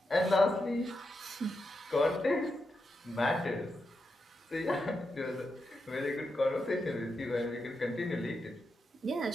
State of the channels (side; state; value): both; normal; correlation 0.86